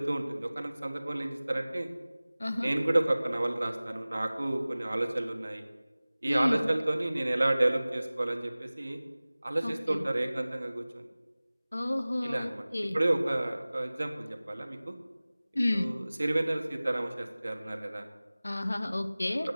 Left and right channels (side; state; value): both; inverted; correlation -0.99